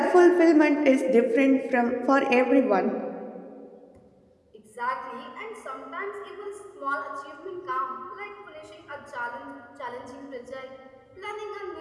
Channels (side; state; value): both; identical; correlation 1.00